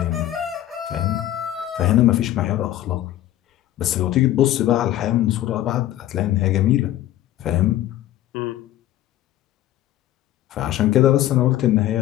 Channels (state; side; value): quieter; right; 13.5 dB